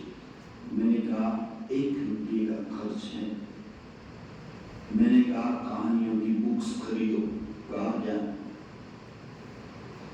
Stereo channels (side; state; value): both; identical; correlation 1.00